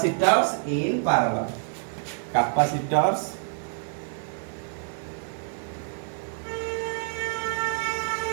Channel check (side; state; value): left; silent; 60 dB below the other